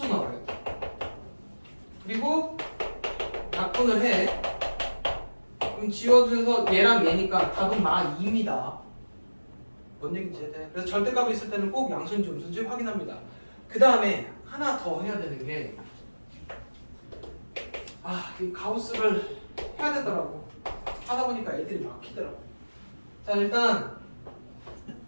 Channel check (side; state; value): both; inverted; correlation -1.00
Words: 나와야 돼. 그리고 약분을 해. 그럼 지워져서 얘랑 얘니까 답은 마 2입니다. 뭔 얘기인지 해야 그래서 절대값이 있을 때는 꼭 양수인지 음수인지 확인합니다. 그 다음에 하나 더 해야 되는 게 이 가우스를 해야 되더라고. 하다 보니까 애들이 막히더라고. 자, 일단